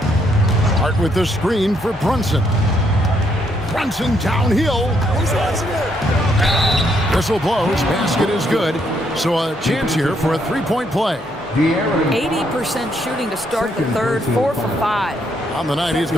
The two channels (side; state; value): both; normal; correlation 0.73